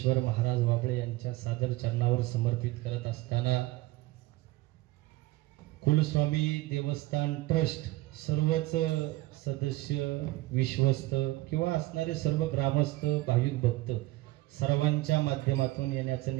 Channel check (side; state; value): left; quieter; 18.9 dB